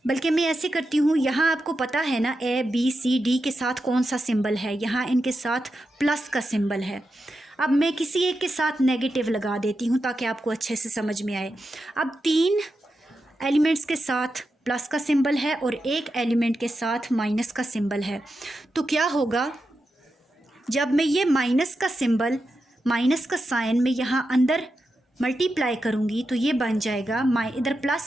बल्कि मैं ऐसे करती हूँ, यहाँ आपको पता है ना a b c d के साथ कौन सा सिंबल है, यहाँ इनके साथ प्लस का सिंबल है। अब मैं किसी एक के साथ नेगेटिव लगा देती हूँ ताकि आपको अच्छे से समझ में आए। अब 3 एलिमेंट्स के साथ प्लस का सिंबल है और एक एलिमेंट के साथ माइनस का सिंबल है, तो क्या होगा, जब मैं ये माइनस का सिंबल, माइनस का साइन में यहाँ अंदर मल्टीप्लाई करूँगी तो ये बन जाएगा इधर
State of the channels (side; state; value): both; normal; correlation 0.89